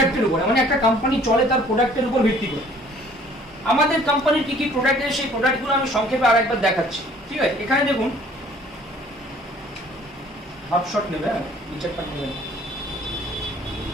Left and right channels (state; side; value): normal; both; correlation 0.55